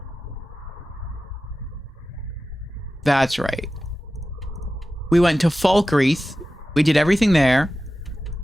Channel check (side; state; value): both; normal; correlation 0.94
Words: That's right. We went to Falkreath. We did everything there.